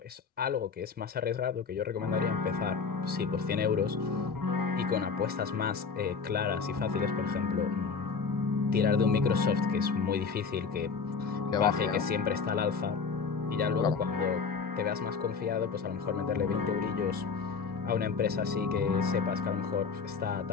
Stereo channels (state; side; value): quieter; right; 5.3 dB